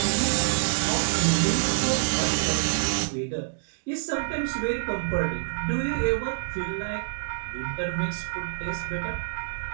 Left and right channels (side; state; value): left; silent; digital silence